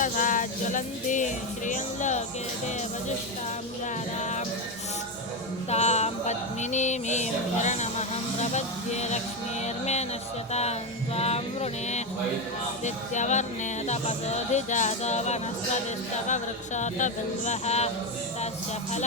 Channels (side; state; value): both; normal; correlation 0.11